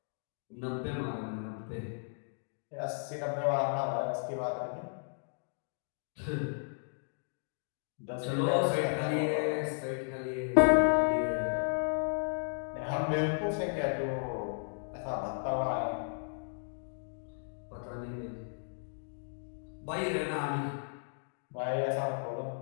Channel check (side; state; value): right; silent; digital silence